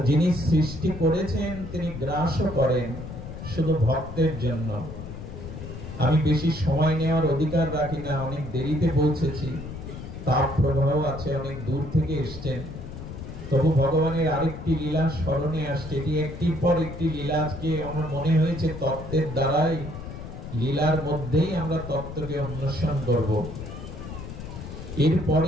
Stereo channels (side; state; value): left; noise; rumble, 10 dB below the sound